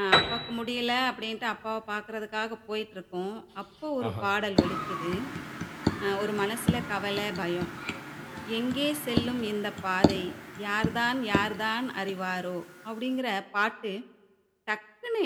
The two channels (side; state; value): both; identical; correlation 1.00